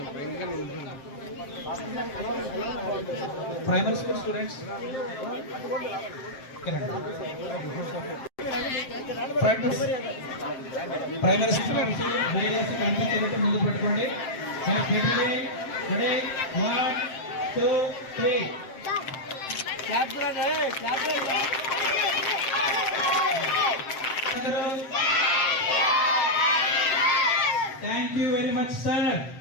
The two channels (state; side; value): late; right; 7.6 ms